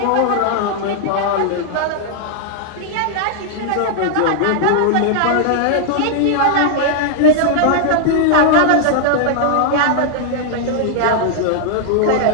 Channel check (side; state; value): both; different; correlation -0.01